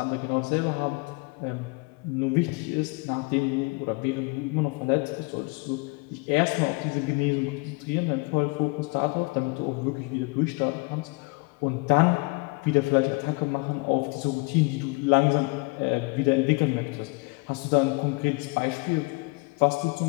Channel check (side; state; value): right; quieter; 27.7 dB